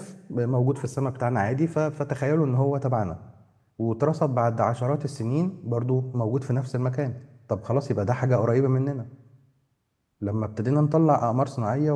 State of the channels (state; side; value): identical; both; correlation 1.00